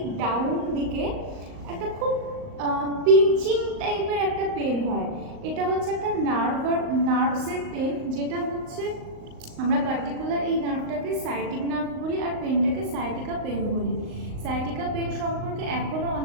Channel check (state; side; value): late; left; 38 ms